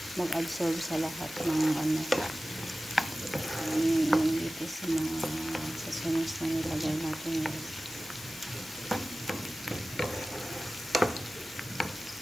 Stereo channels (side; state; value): both; normal; correlation 0.96